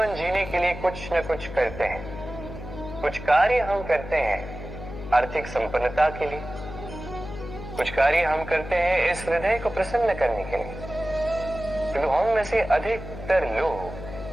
जीने के लिए कुछ न कुछ करते हैं। कुछ कार्य हम करते हैं आर्थिक संपन्नता के लिए, कुछ कार्य हम करते हैं इस हृदय को प्रसन्न करने के लिए। किंतु हम में से अधिकतर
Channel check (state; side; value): noise; left; hum, 11 dB below the sound